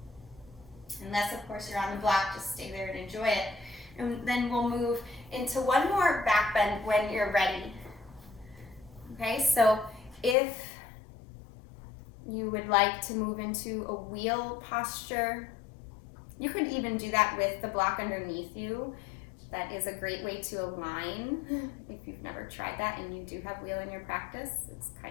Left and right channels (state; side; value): drops out; right; at 10.4 s